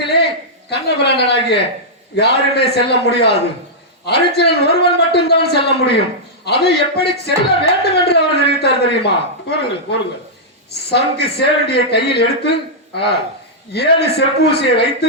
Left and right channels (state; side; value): normal; both; correlation -0.09